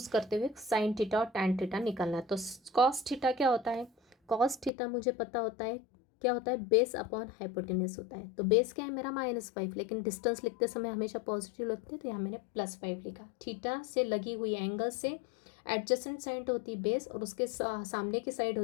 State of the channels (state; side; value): drops out; right; at 4.7 s